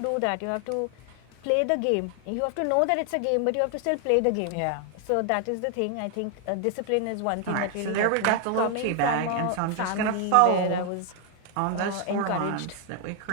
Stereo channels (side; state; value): both; different; correlation 0.00